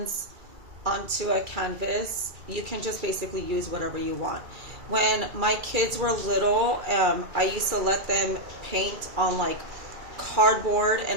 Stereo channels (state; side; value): late; left; 2.3 ms